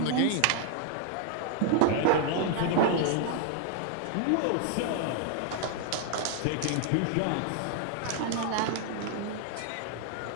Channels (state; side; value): different; both; correlation 0.00